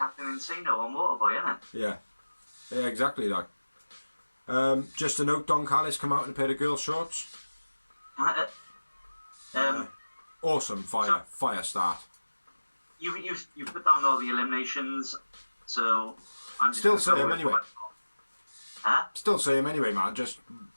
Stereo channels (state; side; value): inverted; both; correlation -1.00